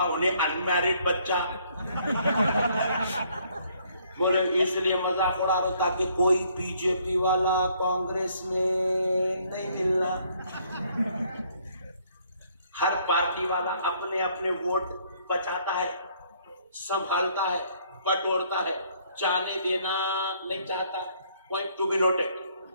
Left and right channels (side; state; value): both; inverted; correlation -0.65